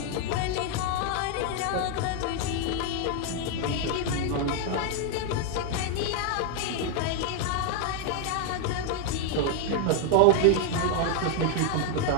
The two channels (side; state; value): both; different; correlation 0.00